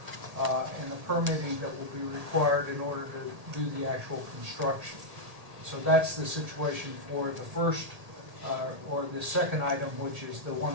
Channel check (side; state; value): left; late; 1.8 ms